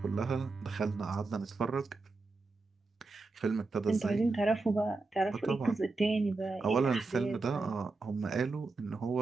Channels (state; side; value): quieter; left; 3.6 dB